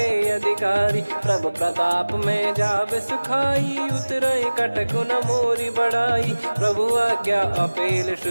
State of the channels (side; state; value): both; inverted; correlation -1.00